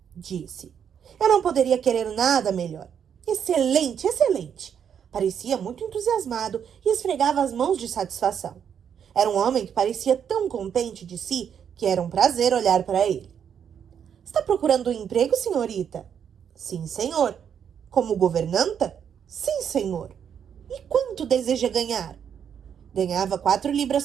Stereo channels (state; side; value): quieter; left; 8.1 dB